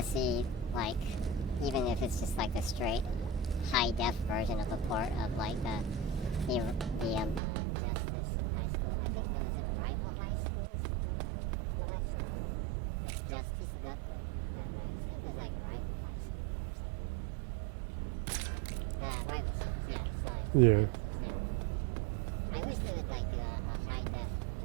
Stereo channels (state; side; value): drops out; left; at 7.4 s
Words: see, like, even if it's just like a straight high-def version of a port of, like, the Justice High School. I think, what was it, rival high schools in the West? It's Justice Gakuen in Japan, but I think it was like rival high school or something. Rival schools, yeah. Sorry, it says Yeah. rival schools, yeah. I wish they would, like, do a high-def